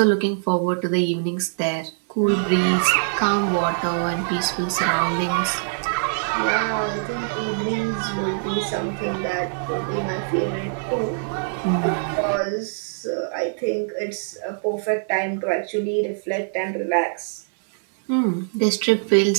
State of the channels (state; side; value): silent; left; digital silence